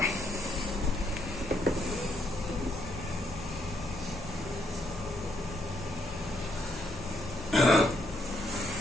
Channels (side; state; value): left; noise; hum, 16 dB below the sound